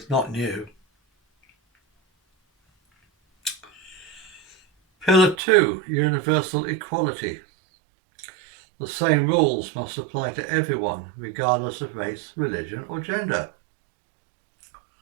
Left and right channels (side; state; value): left; drops out; at 5.4 s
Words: not new. Pillar 2, universal equality. The same rules must apply to everyone, regardless of race, religion or gender.